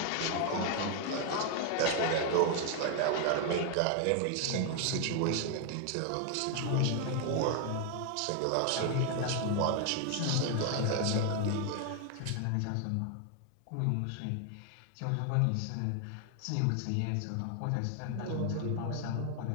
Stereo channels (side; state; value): both; different; correlation 0.00